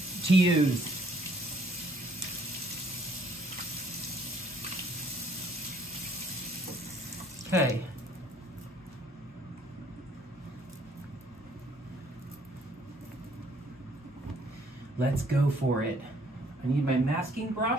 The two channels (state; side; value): normal; both; correlation 0.63